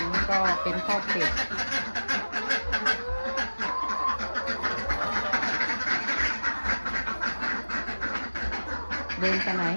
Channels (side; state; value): both; inverted; correlation -1.00